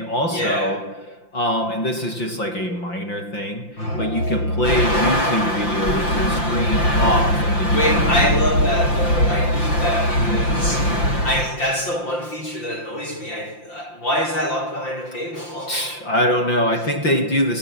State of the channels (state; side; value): late; right; 5.8 ms